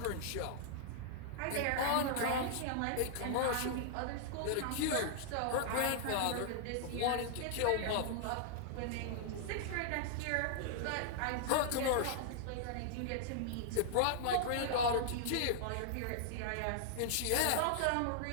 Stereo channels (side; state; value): both; different; correlation -0.01